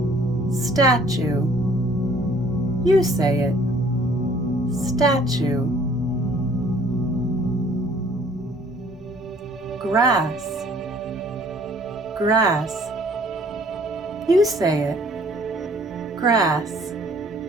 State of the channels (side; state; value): both; normal; correlation 0.57